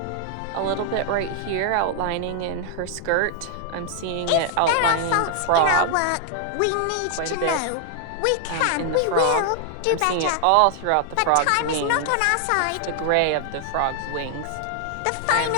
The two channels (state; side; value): different; both; correlation 0.00